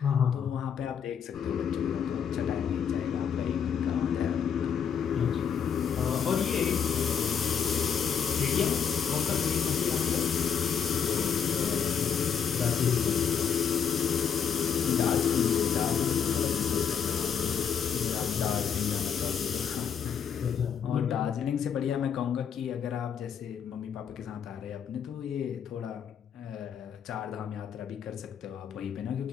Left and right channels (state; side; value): quieter; right; 7.5 dB